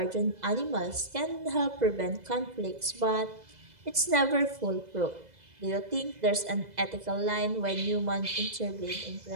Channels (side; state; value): left; late; 2.0 ms